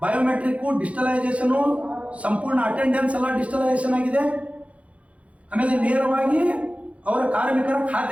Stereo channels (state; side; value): late; left; 0.064 ms